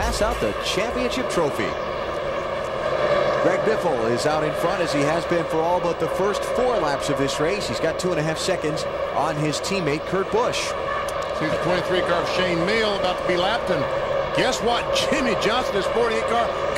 out the championship trophy. Greg Biffle is out in front, as he has been for all but the first 4 laps of this race. He's got 2.5 seconds on his teammate Kurt Busch. See the 23 car of Shane Meal about to be lapped, and guess what? Jimmy Johnson, his 48 car,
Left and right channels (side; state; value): both; identical; correlation 1.00